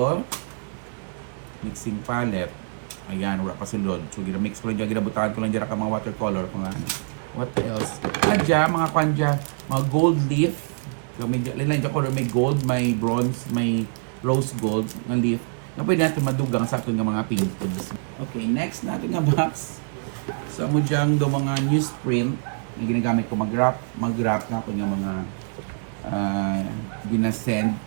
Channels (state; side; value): silent; left; 62 dB below the other